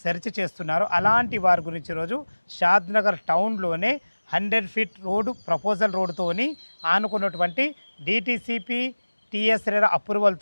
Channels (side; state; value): both; inverted; correlation -1.00